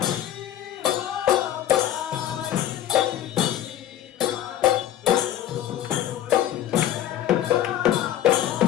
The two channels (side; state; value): right; quieter; 11.9 dB